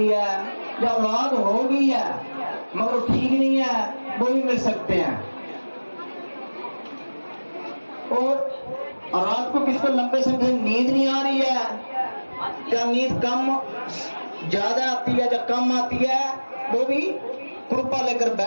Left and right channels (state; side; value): inverted; both; correlation -1.00